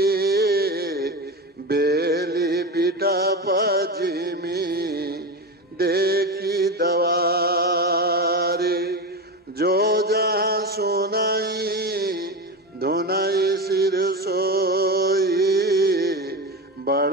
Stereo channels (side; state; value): both; normal; correlation 0.20